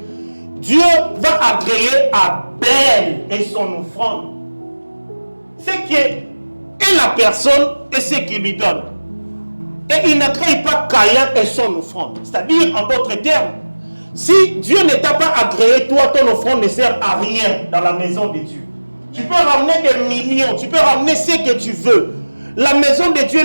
Dieu va agréer Abel et son offrande. Ce qui est la personne et ce qu'il lui donne. Et il n'agrée pas Caïn et son offrande. C'est-à-dire, en d'autres termes, si Dieu ne t'a pas agréé, toi, ton offrande ne sert à rien dans la maison de Dieu. Tu peux ramener des millions, tu peux ramener ce que tu veux. La maison de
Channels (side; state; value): both; inverted; correlation -1.00